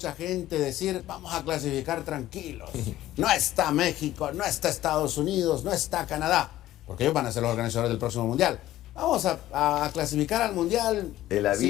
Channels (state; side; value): quieter; right; 14.4 dB